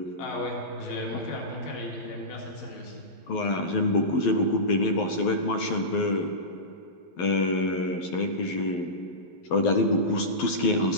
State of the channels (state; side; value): late; right; 12 ms